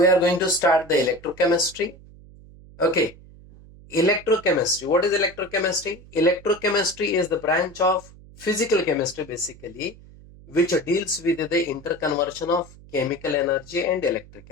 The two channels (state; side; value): noise; right; hum, 22 dB below the sound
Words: are going to start the electrochemistry. Okay, electrochemistry. What is electrochemistry? Electrochemistry is the branch of physical chemistry basically, which deals with the interconversion of chemical energy and